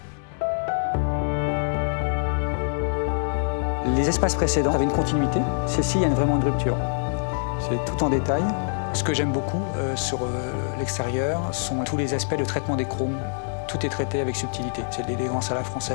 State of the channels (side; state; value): right; silent; digital silence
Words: Les espaces précédents avaient une continuité. Celle-ci, il y a vraiment une rupture. C'est tout en détail. Ce que j'aime beaucoup sur l'extérieur sont tous les aspects de traitement des chromes. Tout est traité avec subtilité. C'est de l'élégance à la